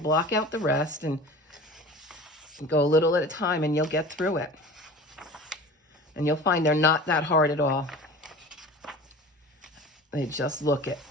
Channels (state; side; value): normal; both; correlation 0.38